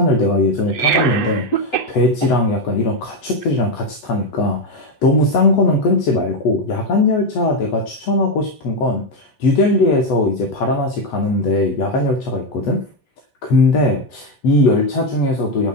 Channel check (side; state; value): right; late; 8.0 ms